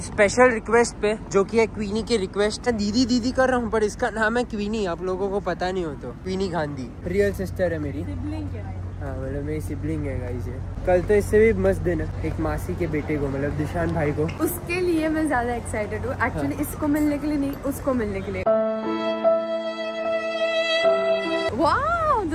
स्पेशल रिक्वेस्ट पे जो कि है क्वीनी की रिक्वेस्ट है, दीदी कर रहा हूँ पर इसका नाम है क्वीनी, आप लोगों को पता नहीं हो तो क्वीनी गांधी रियल सिस्टर है मेरी। हाँ मतलब मेरी सिबलिंग है गाइस ये। कल तो इससे भी मस्त दिन है, एक मासी के बेटे को मतलब दिशान भाई को। उसके लिए मैं ज्यादा एक्साइटेड हूँ एक्चुअली। इसको मिलने के लिए नहीं, उसको मिलने के लिए। Wow,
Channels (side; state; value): both; identical; correlation 1.00